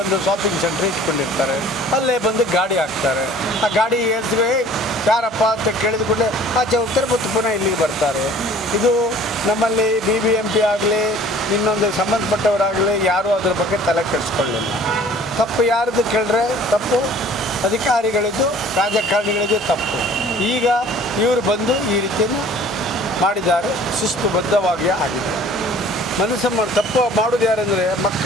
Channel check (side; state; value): both; normal; correlation 0.50